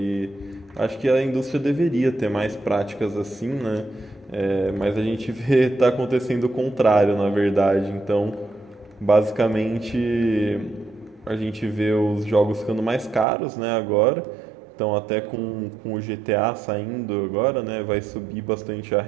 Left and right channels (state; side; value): drops out; left; at 13.2 s